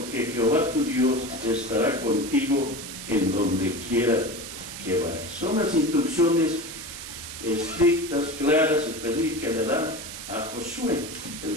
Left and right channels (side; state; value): right; noise; hiss, 10 dB below the sound